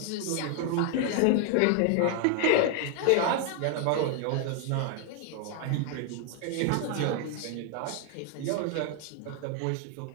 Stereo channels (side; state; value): both; different; correlation 0.00